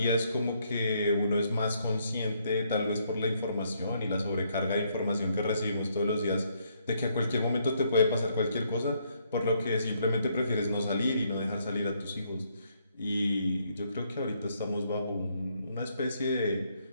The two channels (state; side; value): inverted; both; correlation -0.72